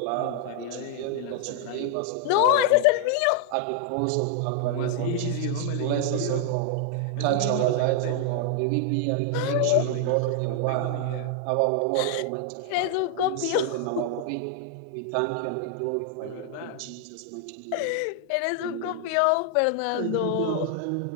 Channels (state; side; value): different; both; correlation 0.00